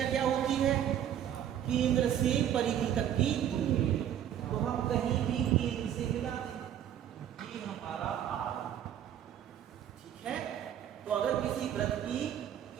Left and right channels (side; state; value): left; quieter; 10.3 dB